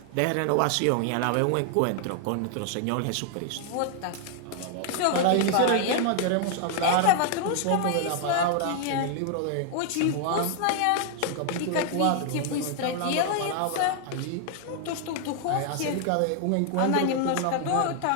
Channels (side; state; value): both; different; correlation 0.00